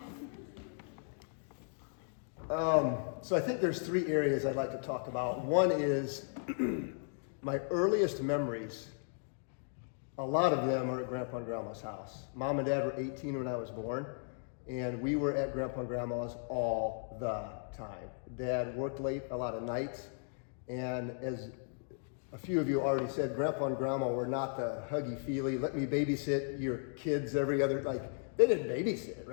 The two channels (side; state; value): right; silent; 54 dB below the other